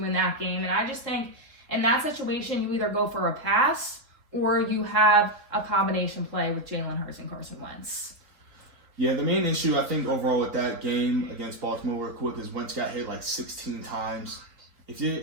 in that game. And I just think in that situation, you either go for a pass or you have a combination play with Jalen Hurts and Carson Wentz. Yeah, the main issue I think overall with that game against Baltimore real quick is Wentz got hit like 16 times.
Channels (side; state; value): left; late; 3.7 ms